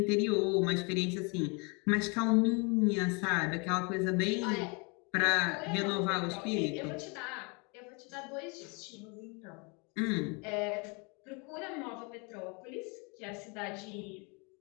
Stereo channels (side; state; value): right; quieter; 31.8 dB